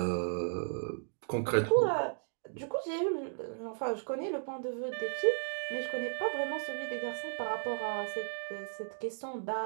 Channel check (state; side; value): silent; left; digital silence